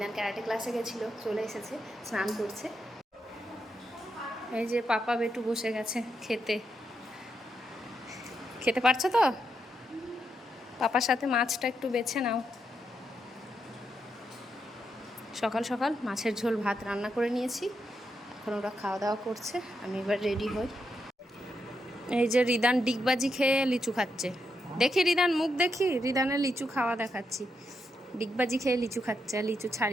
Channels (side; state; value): both; normal; correlation 0.82